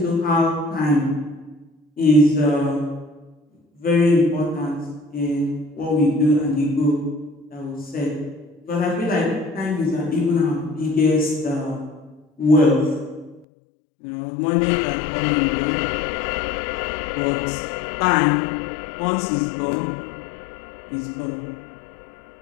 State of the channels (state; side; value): drops out; right; at 13.5 s